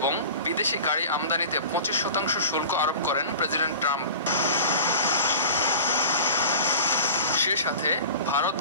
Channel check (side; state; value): both; inverted; correlation -0.35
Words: বিদেশি গাড়ি আমদানিতে 25% শুল্ক আরোপ করেন প্রেসিডেন্ট ট্রাম্প। সে সাথে ভারত,